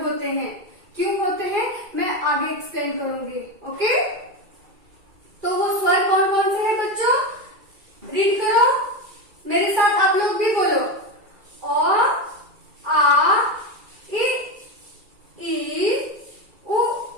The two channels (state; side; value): late; left; 2.3 ms